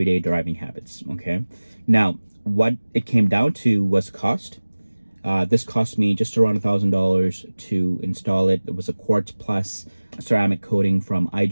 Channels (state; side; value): inverted; both; correlation -1.00